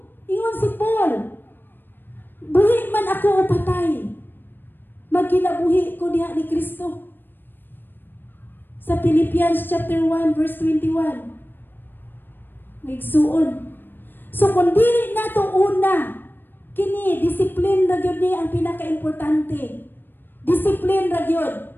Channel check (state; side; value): late; right; 0.095 ms